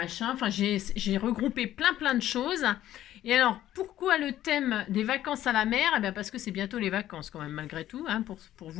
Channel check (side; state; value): right; quieter; 12.9 dB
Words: Enfin, j'ai regroupé plein de choses. Et alors, pourquoi le thème des vacances à la mer? Eh bien, parce que c'est bientôt les vacances quand même, malgré tout, hein, pour